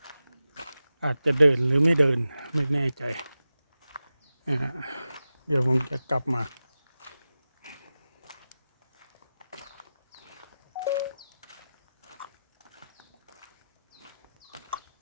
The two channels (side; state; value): both; inverted; correlation -0.94